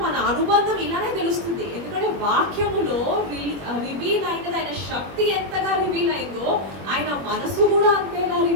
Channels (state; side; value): late; left; 21 ms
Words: మన అనుబంధం ఇలానే తెలుస్తుంది. ఎందుకంటే వాక్యములో రివీల్ అయినది, ఆయన శక్తి ఎంతగా రివీల్ అయిందో ఆయన మనసు కూడా అంతేగా